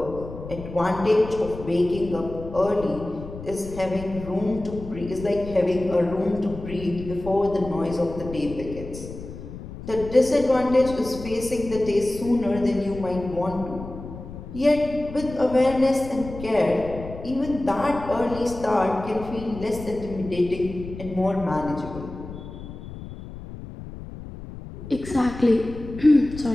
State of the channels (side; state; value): left; noise; rumble, 12 dB below the sound